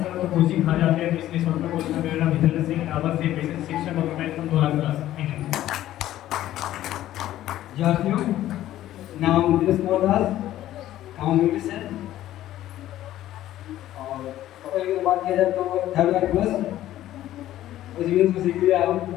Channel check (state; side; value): quieter; right; 13.5 dB